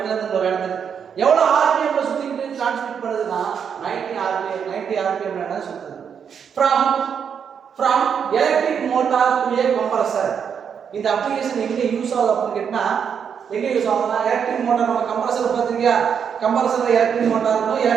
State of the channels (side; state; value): left; quieter; 7.3 dB